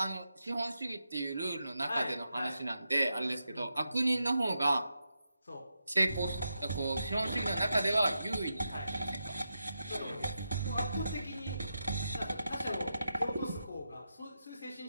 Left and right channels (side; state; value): both; inverted; correlation -0.87